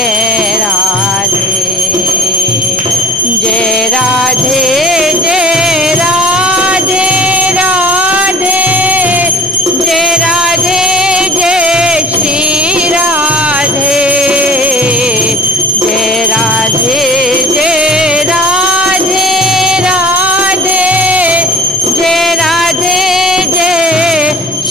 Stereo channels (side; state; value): both; normal; correlation 0.48